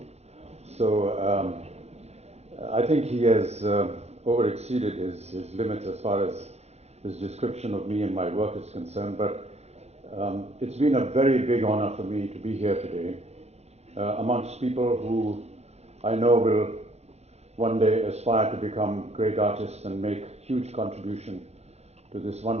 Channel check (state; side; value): late; left; 0.31 ms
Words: So I think he has overexceeded his limits as far as his description of me and my work is concerned. But it's been a very big honor for me to be here today amongst people who I know will one day aspire to become great artists and make huge contribution to this